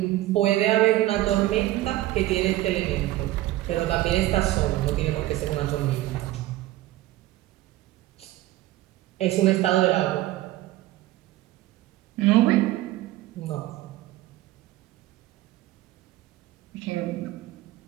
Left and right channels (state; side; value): quieter; left; 15.9 dB